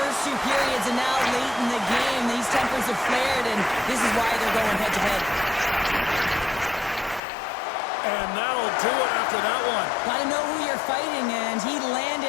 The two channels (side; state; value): right; drops out; at 7.2 s